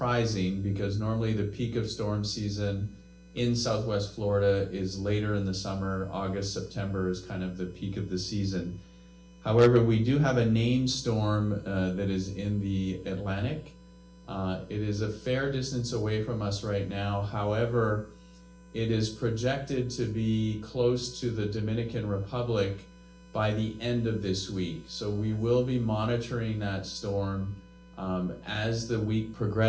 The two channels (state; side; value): identical; both; correlation 1.00